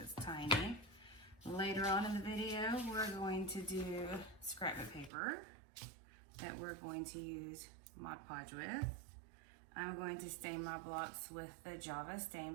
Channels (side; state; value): left; drops out; at 5.1 s